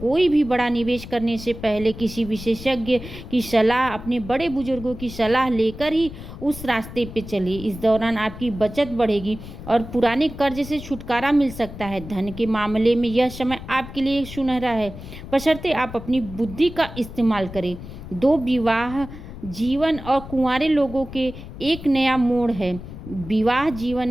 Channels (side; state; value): left; noise; rumble, 12 dB below the sound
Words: भी बड़ा निवेश करने से पहले किसी विशेषज्ञ की सलाह, अपने बड़े बुजुर्गों की सलाह लेकर ही उस रास्ते पे चलिए। इस दौरान आपकी बचत बढ़ेगी और पुराने कर्ज से छुटकारा मिल सकता है। धन के मामले में यह समय आपके लिए सुनहरा है, बशर्ते आप अपनी बुद्धि का इस्तेमाल करें। दो, विवाह जीवन और कुंवारे लोगों के एक नया मोड़ है। विवाह जीवन